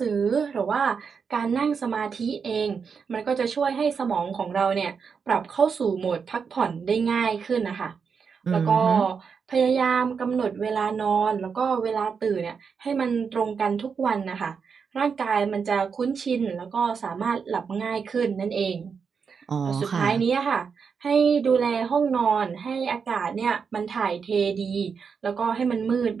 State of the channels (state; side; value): quieter; left; 6.0 dB